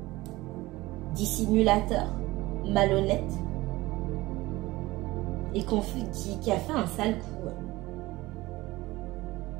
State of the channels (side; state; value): left; quieter; 19.3 dB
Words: dissimulateur, malhonnête, et qui a fait un sale coup.